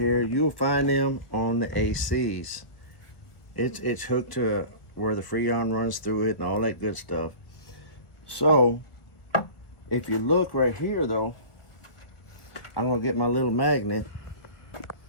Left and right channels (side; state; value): right; late; 1.2 ms